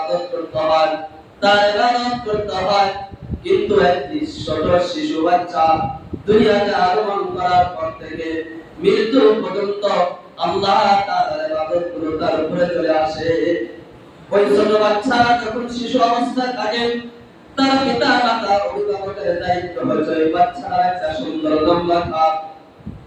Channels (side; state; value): both; identical; correlation 1.00